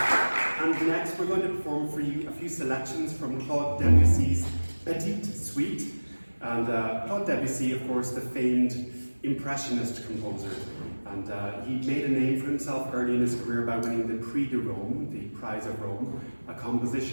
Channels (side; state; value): both; inverted; correlation -1.00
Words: And next we're going to perform for you a few selections from Claude Debussy's Petite Suite. And Claude Debussy, of course, the famed Impressionist composer. And he made a name for himself early in his career by winning the Prix de Rome, the Prize of Rome, a